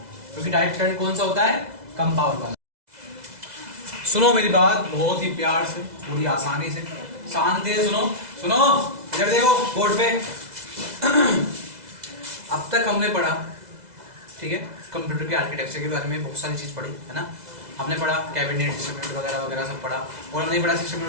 क्योंकि डायरेक्ट करंट कौन सा होता है, कम पावर वाला। सुनो मेरी बात बहुत ही प्यार से, पूरी आसानी से, शांति से सुनो। सुनो, इधर देखो बोर्ड पे। अब तक हमने पढ़ा, ठीक है, कंप्यूटर के आर्किटेक्चर के बारे में बहुत सारी चीज पढ़ी, है ना। हमने पढ़ा कैबिनेट, सिस्टम यूनिट वगैरह वगैरह सब पढ़ा। और हमने पढ़ा सिस्टम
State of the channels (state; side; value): late; left; 2.0 ms